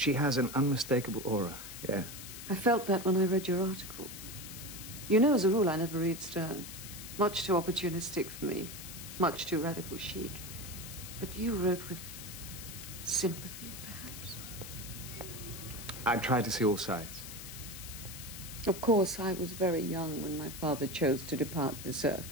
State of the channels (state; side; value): noise; left; hiss, 11 dB below the sound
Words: has an unmistakable aura, yes. I felt that when I read your article. You know, as a rule, I never read Stern. Much too opportunistic for me. Much too radical chic. But you wrote with sympathy, perhaps. I tried to see all sides. Of course, I was very young when my father chose to depart this